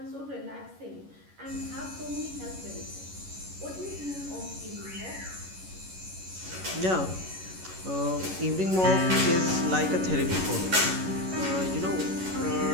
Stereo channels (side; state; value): left; late; 11 ms